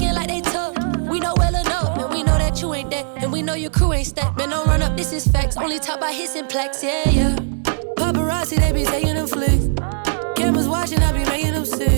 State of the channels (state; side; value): silent; left; digital silence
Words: like they tough, we know well enough. And we know that you ain't that, and we know your crew ain't stacked. Man, don't run up, this is facts. Only talk by hits and plaques, yeah. Paparazzi, they be taking them flicks. Cameras watching, I be making them